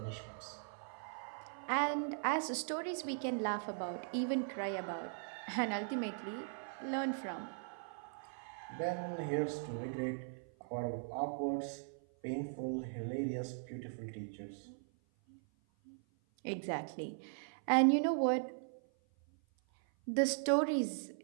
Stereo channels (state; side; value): silent; left; 52 dB below the other